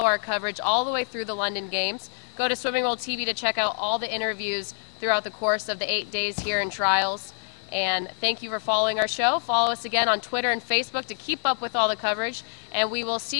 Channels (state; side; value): silent; right; digital silence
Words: our coverage all the way through the London Games. Go to Swimming World TV to check out all the interviews throughout the course of the 8 days here in trials. And thank you for following our show. Follow us again on Twitter and Facebook to keep up with all the coverage. And we will